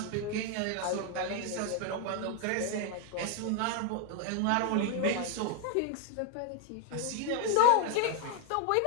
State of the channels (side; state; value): both; different; correlation 0.01